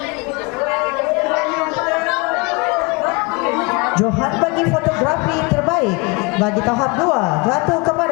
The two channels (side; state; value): right; quieter; 28.2 dB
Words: Johan bagi fotografi terbaik bagi tahap 2 jatuh